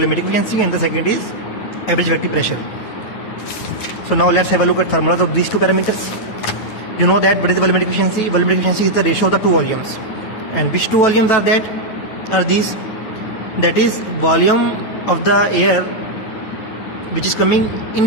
efficiency and the second is average effective pressure. So now let's have a look at formulas of these two parameters. You know that what is the volumetric efficiency? Volumetric efficiency is the ratio of the two volumes. And which two volumes are that? Are these? That is volume of the air which is coming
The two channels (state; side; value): late; right; 9.2 ms